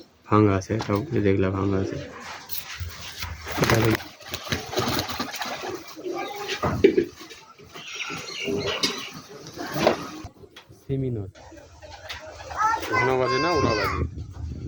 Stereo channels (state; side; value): identical; both; correlation 1.00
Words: ভাঙা আছে তাও দেখলাম ভাঙা আছে সেমিনর ঘন বাজে না ওরা বাজে